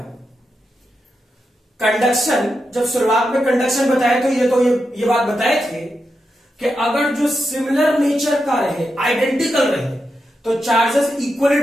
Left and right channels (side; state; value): both; normal; correlation 0.87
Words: कंडक्शन, जब शुरुआत में कंडक्शन बताए तो ये बात बताए थे कि अगर जो सिमिलर नेचर का रहे, आइडेंटिकल रहे, तो चार्जेस इक्वली